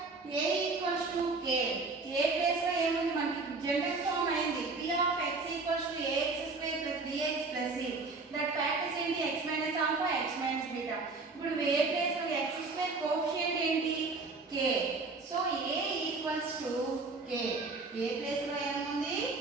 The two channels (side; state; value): left; quieter; 3.9 dB